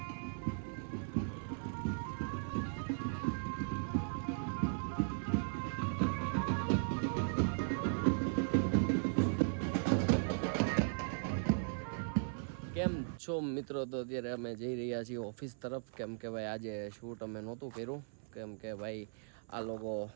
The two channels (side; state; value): left; silent; 53 dB below the other